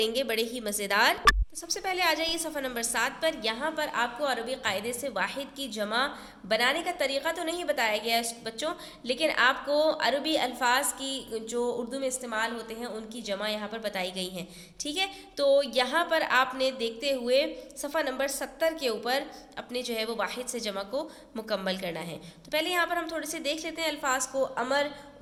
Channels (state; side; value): identical; both; correlation 1.00